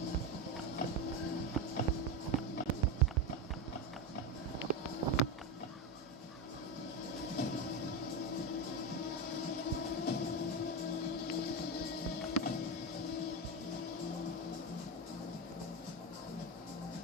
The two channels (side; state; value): both; normal; correlation 0.15